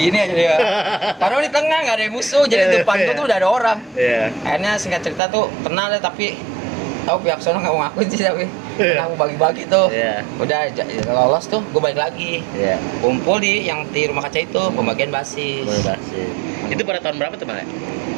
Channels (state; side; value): drops out; left; at 5.2 s